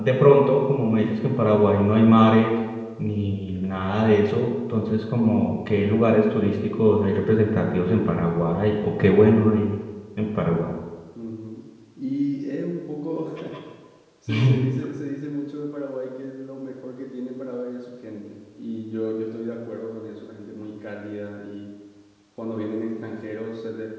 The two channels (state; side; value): identical; both; correlation 1.00